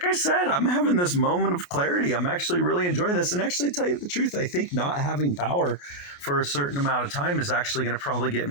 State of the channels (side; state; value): right; late; 28 ms